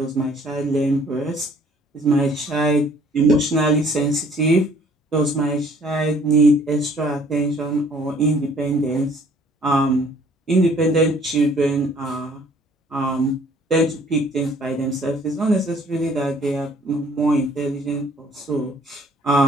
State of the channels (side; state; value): both; normal; correlation 0.57